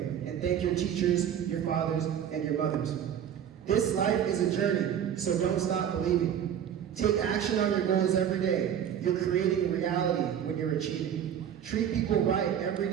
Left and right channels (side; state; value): left; quieter; 9.2 dB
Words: and thank your teachers, your fathers, and your mothers. This life is a journey, so don't stop believing. Take action on your goals every day. You're creating reality when you're achieving. Treat people right every